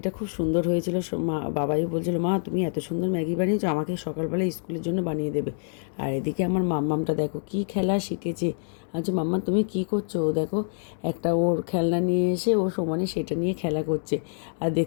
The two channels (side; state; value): right; silent; digital silence